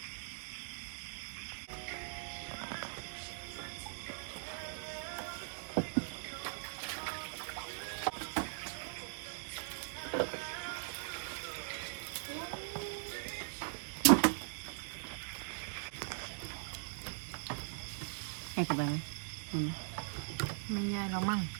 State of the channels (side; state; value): left; silent; digital silence